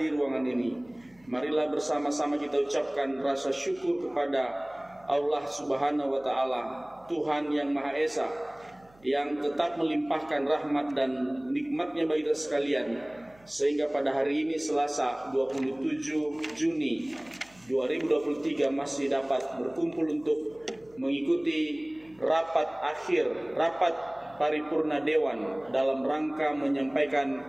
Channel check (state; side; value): noise; right; hum, 29 dB below the sound